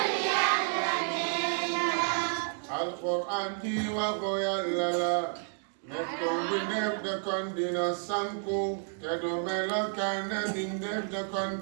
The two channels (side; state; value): left; silent; 57 dB below the other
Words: Yàlla neen la alquran ji waxu yàlla la nekkoon bi def de kon dina sanku te du melokaan bi def de kon